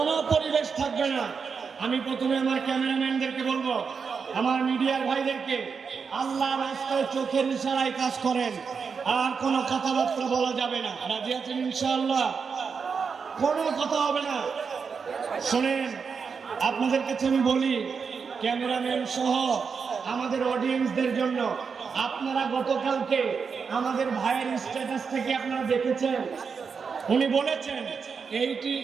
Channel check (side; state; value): left; quieter; 5.7 dB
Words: পরিবেশ থাকবে না। আমি প্রথমে আমার ক্যামেরাম্যানদেরকে বলবো, আমার মিডিয়ার ভাইদেরকে, আল্লাহর রাস্তায় চোখের ইশারায় কাজ করেন, আর কোনো কথাবার্তা বলা যাবে না। রাজি আছেন ইনশাআল্লাহ? কোনো কথা হবে না। শোনেন, আপনাদের কাছে আমি বলি, ক্যামেরাম্যান সহ আমাদের অডিয়েন্সদের জন্য, আপনারা গতকালকে আমাদের ভাইয়ের স্ট্যাটাস থেকে আপনারা দেখেছেন, উনি বলেছেন এইটি